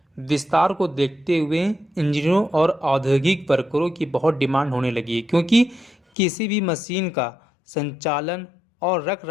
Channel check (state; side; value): drops out; right; at 6.0 s